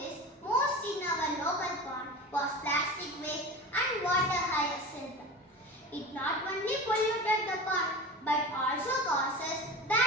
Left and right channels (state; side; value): normal; both; correlation 0.30